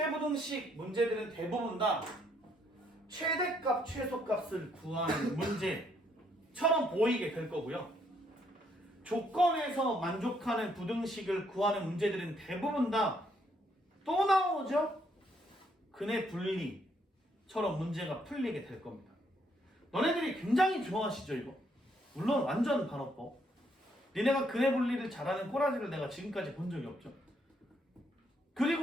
문제들은 대부분 다 최대값, 최소값을 구하는 문제처럼 보이게 될 거고요. 조건에서 만족하는 부등식을 구하는 문제들은 대부분 다 또 나오죠? 근의 분리처럼 문제가 풀리게 될 겁니다. 너네들이 굉장히 좋아하시죠, 이거? 물론 완전 반어법. 니네가 근의 분리를 잘하는 꼬라지를 내가 지금까지 본 적이 없죠.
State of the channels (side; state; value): both; normal; correlation 0.71